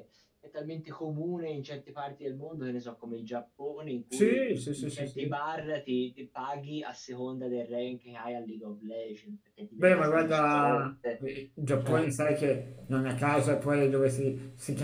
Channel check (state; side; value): identical; both; correlation 1.00